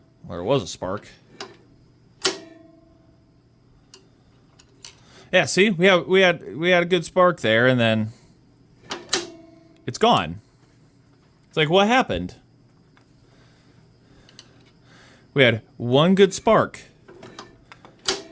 there was a spark. Yeah, see? We had a good spark there, and then... It's gone. It's like, what happened? We had one good spark.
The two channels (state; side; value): identical; both; correlation 1.00